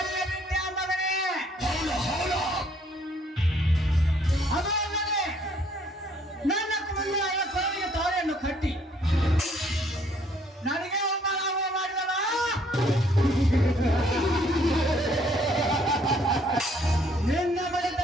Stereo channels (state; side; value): normal; both; correlation 0.64